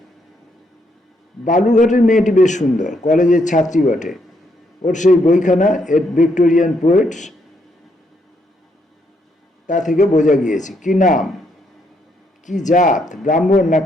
বালুরঘাটের মেয়েটি বেশ সুন্দর, কলেজের ছাত্রী বটে। ওর সেই বইখানা এট ভিক্টোরিয়ান পোয়েটস, তা থেকে বোঝা গিয়েছে। কি নাম, কি জাত, ব্রাহ্মণ না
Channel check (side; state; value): both; normal; correlation 0.74